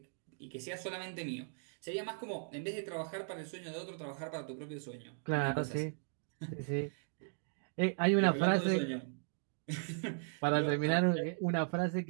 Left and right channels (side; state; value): left; silent; digital silence